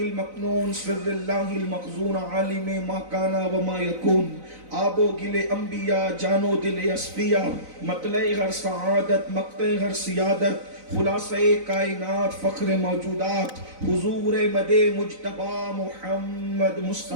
سر اللہ المخزون، عالم ما کانا وما یکون، آب و گل انبیاء جان و دل اصفیاء، مطلع ہر سعادت مقطع ہر سیادت، خلاصہ کائنات فخر موجودات، حضور مد مجتبی محمد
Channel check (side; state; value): left; late; 3.9 ms